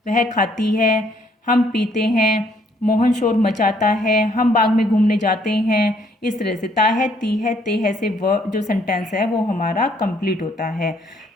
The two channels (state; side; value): normal; both; correlation 0.66